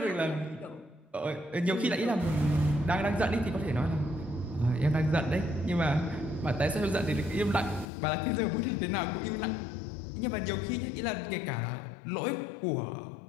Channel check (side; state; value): right; drops out; at 7.9 s